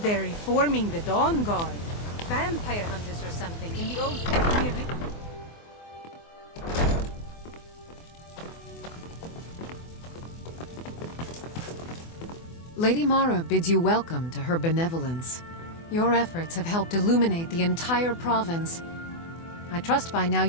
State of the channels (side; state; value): right; late; 24 ms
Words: they're reforming the Dawn Guard. Vampire hunters or something in the old fort near the... Lady Mara bids you welcome to her benevolence. Your efforts have helped illuminate the entire province. I trust by now